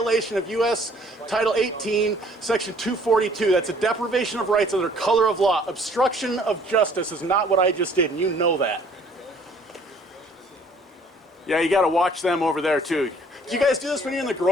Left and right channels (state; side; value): normal; both; correlation 0.57